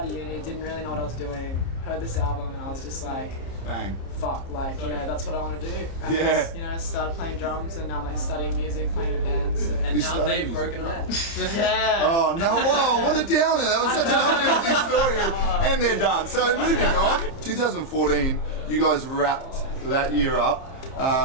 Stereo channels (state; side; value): late; right; 30 ms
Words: of uni, didn't really know what I was doing. Heard this album, and I was just like, Bang. fuck, like, you know, that's what I want to do. And Yeah. just, you know, started playing drums, and now I'm like studying music, playing in a band. So. and You now studied they've music? broken up. Yeah. Oh no! Whoa! What a downer! That was such an uplifting story, and they're done. So moving on. 2014, you guys wrapped that year up